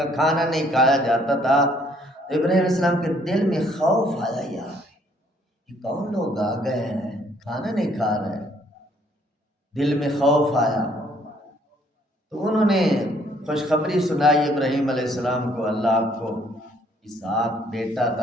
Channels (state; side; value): normal; both; correlation 0.64